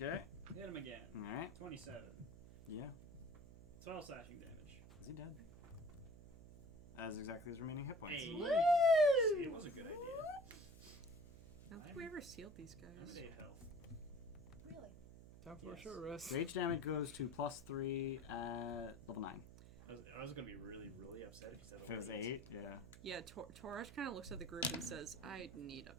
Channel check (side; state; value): right; noise; hum, 16 dB below the sound